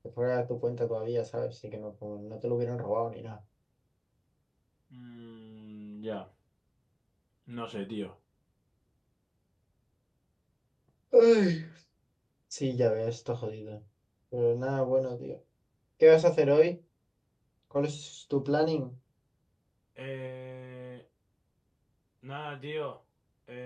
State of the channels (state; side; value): identical; both; correlation 1.00